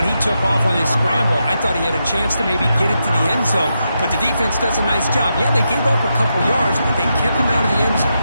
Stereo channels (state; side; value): inverted; both; correlation -0.85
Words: he took off on his scramble, I thought he had a chance to maybe get it to the end zone. But the defense does a nice job. Yeah, they gave up a couple yards, but they kept him out of the end